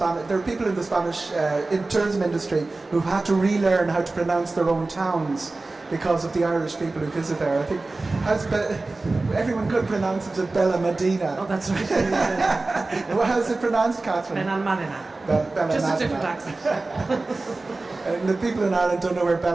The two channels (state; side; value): quieter; left; 3.3 dB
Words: There are people in the Spanish in tourism industry who've had to relearn how to pronounce their own towns because of the Irish people who visit there. I think everyone could pronounce it as Bella Medina. Oh, that's right. Well, how's it pronounced, Kathryn? Benalmadena. Just a different accent. And the people in Ireland don't know where